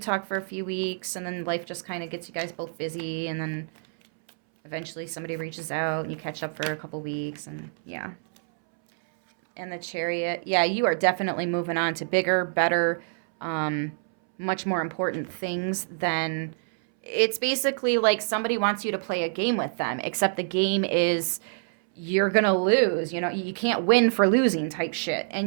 for a few weeks, and then life just kind of gets you guys both busy, and then eventually somebody reaches out, and you catch up for a couple weeks, and yeah. And the Chariot. Yeah, you are definitely moving on to bigger, better, much more important things than... It's basically like somebody wants you to play a game with them, except the game is you're going to lose. You know, you can't win for losing type shit.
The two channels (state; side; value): silent; left; 60 dB below the other